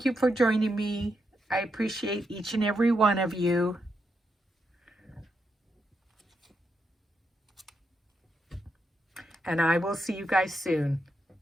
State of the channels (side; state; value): both; normal; correlation 0.82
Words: you for joining me. I appreciate each and every one of you. And I will see you guys soon.